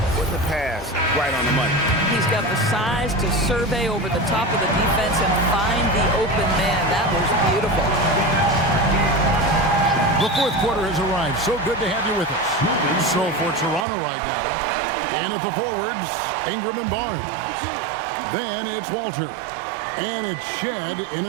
with the pass right on the money. He's got the size to survey over the top of the defense and find the open man. That was beautiful. The fourth quarter has arrived. So good to have you with us. So for Toronto right now, and at the forwards, Ingram and Barnes. Then it's Walter. And it's Shed in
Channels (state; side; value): drops out; left; at 13.9 s